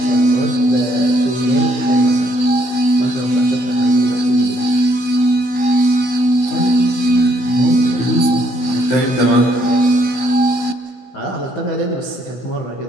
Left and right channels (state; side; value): late; right; 16 ms